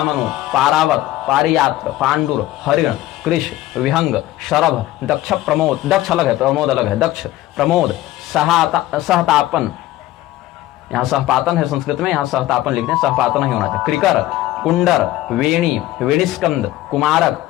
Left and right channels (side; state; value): right; quieter; 15.5 dB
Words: पारावत, पारियात्र, पांडुर, हरिण, कृष, विहंग, शरभ, दक्ष प्रमोद, दक्ष अलग है, प्रमोद अलग है, दक्ष प्रमोद, सहतापन, यहाँ सहपातन है संस्कृत में, यहाँ सहतापन लिखते हैं, सहपातन नहीं होना चाहिए। क्रिकर, कुंडर, वेणी, वेणिस्कंद, कुमारक,